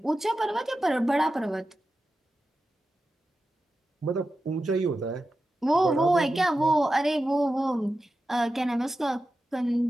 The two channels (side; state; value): both; normal; correlation 0.92